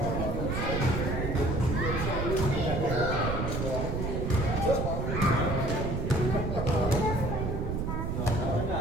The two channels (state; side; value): noise; right; rumble, 2 dB below the sound